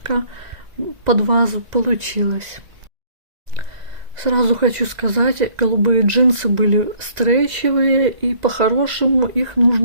под вазу получилась. Сразу хочу сказать, голубые джинсы были стрейчевые, и по-хорошему их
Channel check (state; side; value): late; left; 1.7 ms